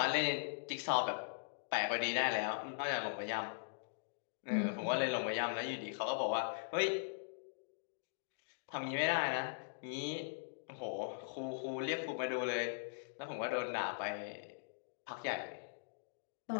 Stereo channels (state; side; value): silent; right; digital silence